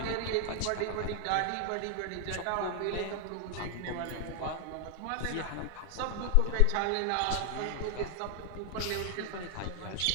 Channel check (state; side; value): different; both; correlation 0.00